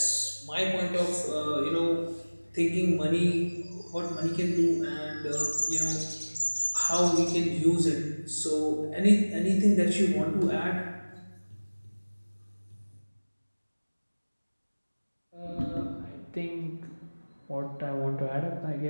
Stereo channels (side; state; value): both; inverted; correlation -1.00